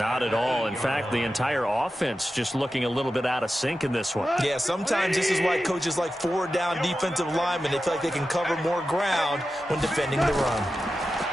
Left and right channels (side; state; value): both; normal; correlation 0.92